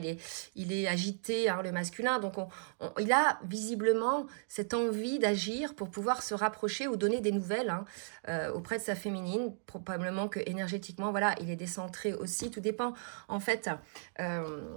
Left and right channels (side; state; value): left; silent; digital silence